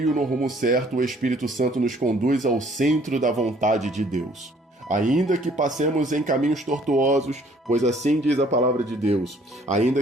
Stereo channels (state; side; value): normal; both; correlation 0.59